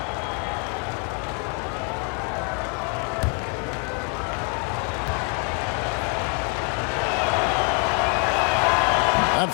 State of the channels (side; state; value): right; quieter; 35.8 dB